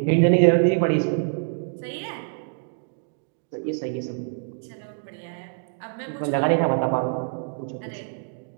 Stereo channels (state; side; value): silent; left; 62 dB below the other